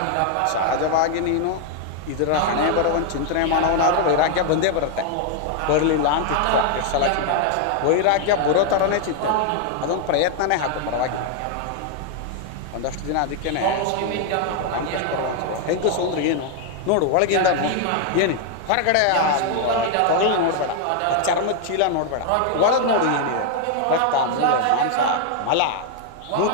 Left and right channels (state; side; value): different; both; correlation 0.00